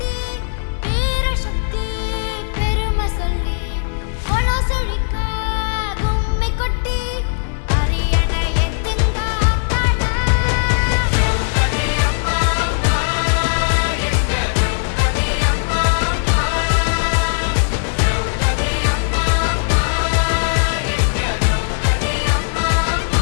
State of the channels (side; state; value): right; silent; digital silence